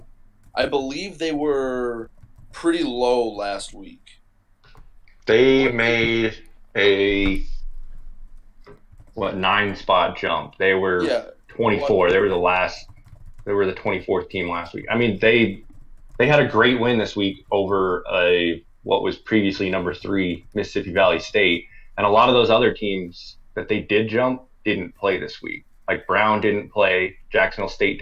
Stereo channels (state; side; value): identical; both; correlation 1.00